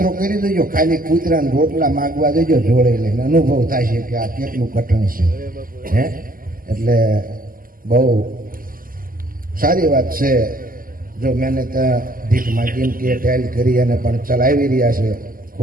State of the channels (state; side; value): late; left; 0.41 ms